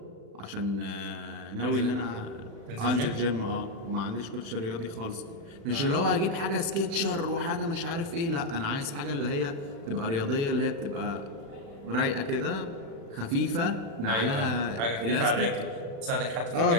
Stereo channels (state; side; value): late; left; 36 ms